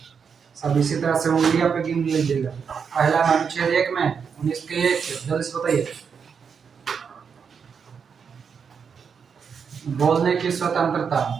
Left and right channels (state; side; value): quieter; left; 6.4 dB